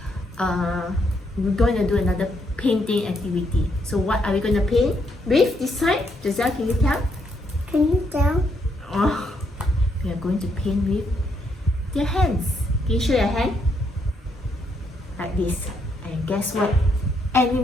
We're going to do another painting activity. So what are we going to paint with this time? Giselle, can you tell? Can you tell? Oh, we are going to paint with their hands. Can you show your hand? Like this. And guess what?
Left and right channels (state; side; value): normal; both; correlation 0.75